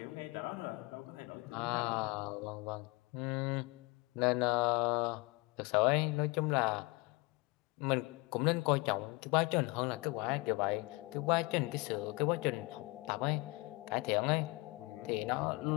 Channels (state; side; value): quieter; right; 25.1 dB